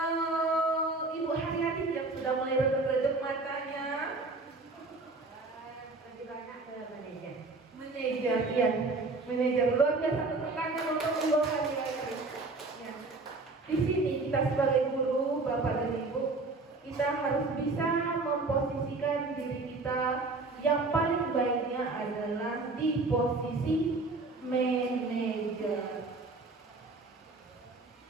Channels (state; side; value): quieter; left; 3.5 dB